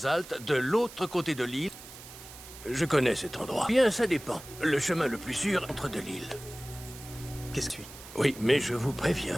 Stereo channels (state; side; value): noise; right; hiss, 16 dB below the sound